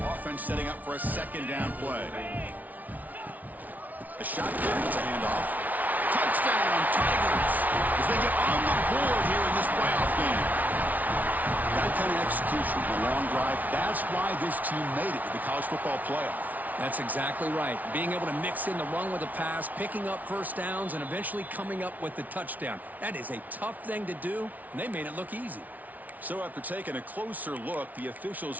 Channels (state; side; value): late; left; 0.076 ms